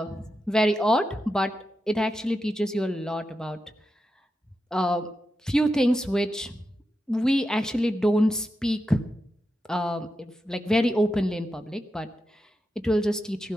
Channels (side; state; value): both; normal; correlation 0.88